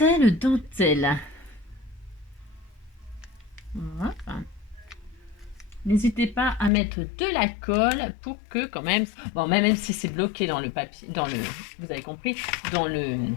Voilà. N'hésitez pas à mettre de la colle pour que quand même, bon, même si c'est bloqué dans le papier, vous avez compris, dans le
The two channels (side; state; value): right; drops out; at 6.7 s